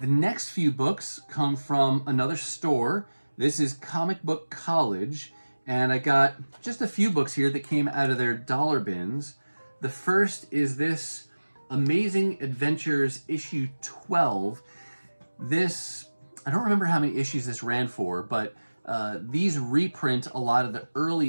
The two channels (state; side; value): inverted; both; correlation -1.00